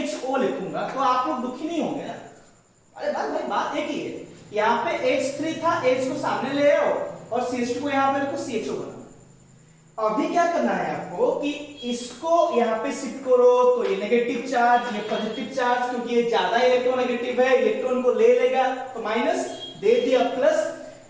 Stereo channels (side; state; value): both; identical; correlation 1.00